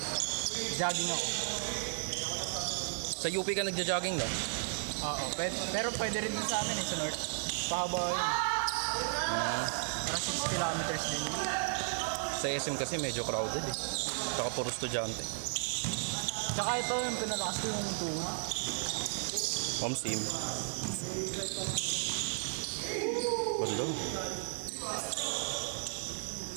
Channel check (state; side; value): silent; left; 55 dB below the other